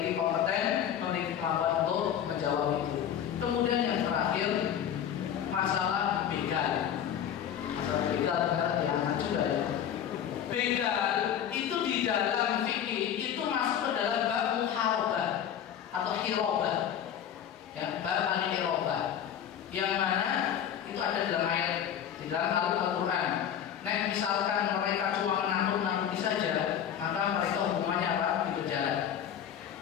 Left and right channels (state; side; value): quieter; right; 9.4 dB